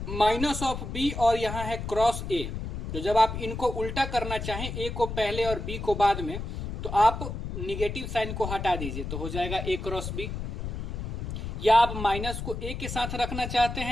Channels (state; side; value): noise; left; rumble, 5 dB below the sound